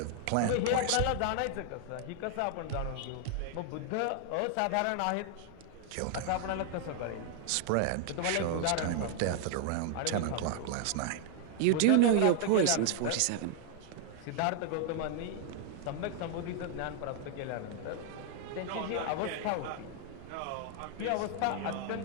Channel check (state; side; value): different; both; correlation 0.00